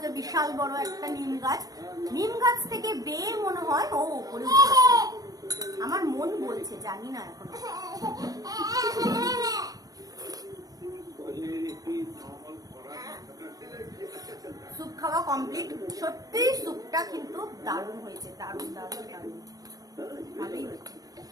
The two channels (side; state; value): left; late; 0.18 ms